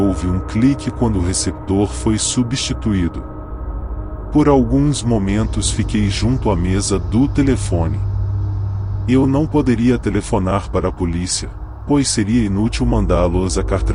um clique quando o receptor foi substituído. Por alguns momentos fiquei junto à mesa do telefone. Eu não poderia telefonar para a polícia, pois seria inútil mandá-los a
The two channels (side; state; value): both; identical; correlation 1.00